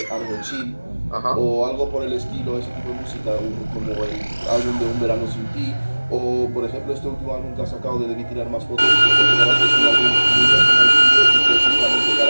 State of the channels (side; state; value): both; inverted; correlation -1.00